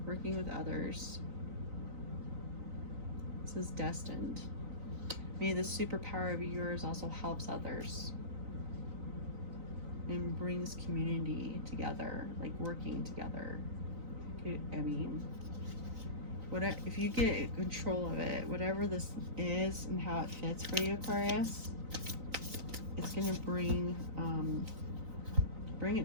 working with others. This is destined. Maybe the superpower of yours also helps others and brings community together, like working together. I mean, if you get control of it, whatever this is and how it fits for you, Aquarius, it's gonna bring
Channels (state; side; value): late; left; 3.9 ms